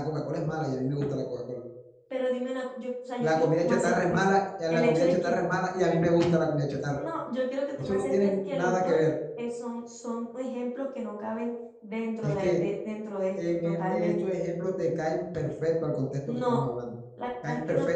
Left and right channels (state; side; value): identical; both; correlation 1.00